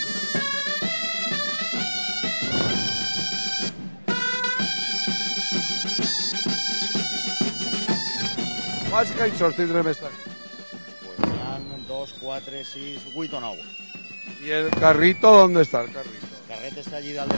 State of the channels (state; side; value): inverted; both; correlation -1.00